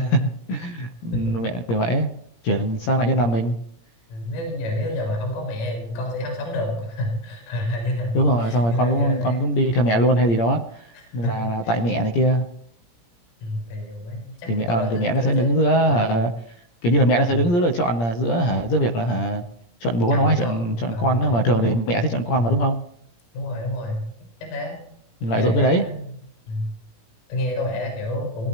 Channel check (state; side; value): late; right; 17 ms